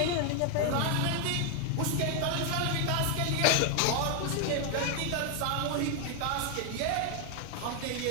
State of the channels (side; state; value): both; different; correlation 0.01